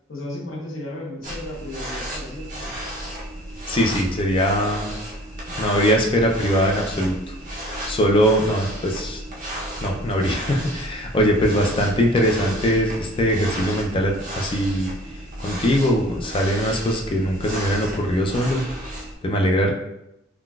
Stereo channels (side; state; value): both; normal; correlation 0.50